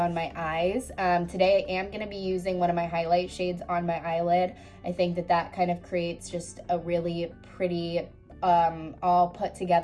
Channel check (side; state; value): both; identical; correlation 1.00